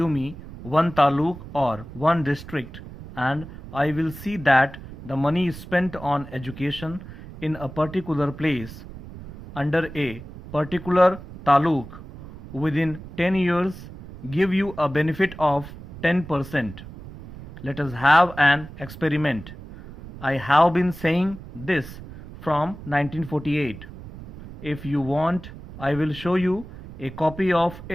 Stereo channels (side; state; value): right; noise; rumble, 15 dB below the sound